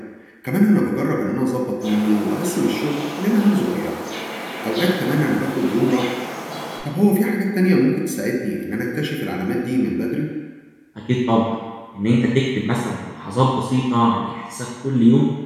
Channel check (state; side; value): identical; both; correlation 1.00